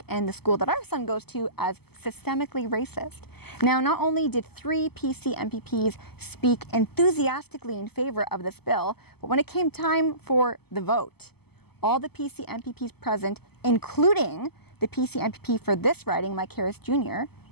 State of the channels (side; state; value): right; late; 0.96 ms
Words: and the school that our son goes to as systemically racist. Now, not only did 3 PC MPPs speak enthusiastically in favor of this bill, but when it came time for the vote, all the PC MPPs present, including the PC MPP for this riding, Mike Harris Jr.,